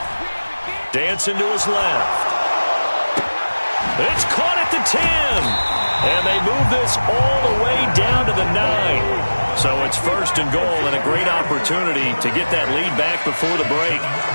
Dancing to his left. It's caught at the 10. And they move this all the way down to the 9. So it's 1st and goal and a great opportunity to get that lead back before the break.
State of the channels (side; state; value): both; inverted; correlation -1.00